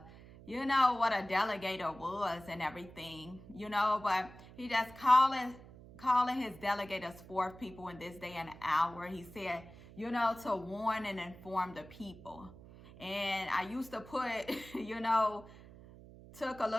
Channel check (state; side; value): noise; right; hum, 19 dB below the sound